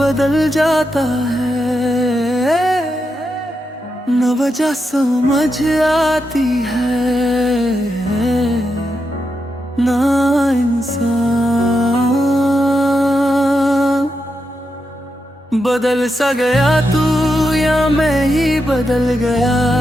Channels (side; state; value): both; normal; correlation 0.85